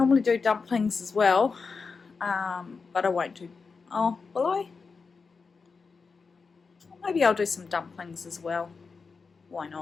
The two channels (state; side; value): quieter; right; 4.8 dB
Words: do dumplings as well, but I won't do, oh, will I? Maybe I'll do some dumplings as well. Why